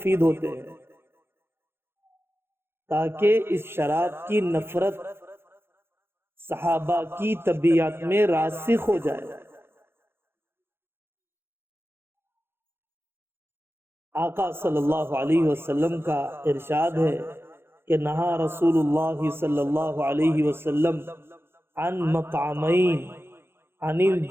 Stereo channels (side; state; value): left; late; 0.11 ms